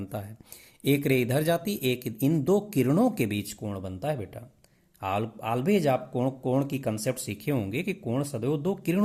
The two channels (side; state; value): both; identical; correlation 1.00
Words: है, एक रे इधर जाती, एक इन दो किरणों के बीच कोण बनता है बेटा। ऑलवेज आप कोण की कंसेप्ट सीखे होंगे कि कोण सदैव दो